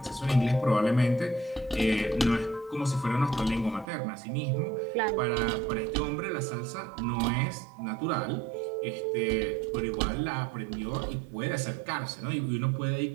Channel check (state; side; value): drops out; left; at 3.9 s